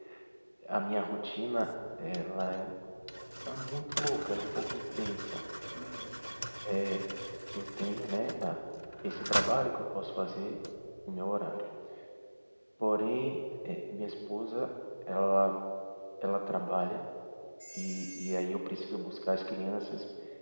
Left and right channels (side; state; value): both; inverted; correlation -1.00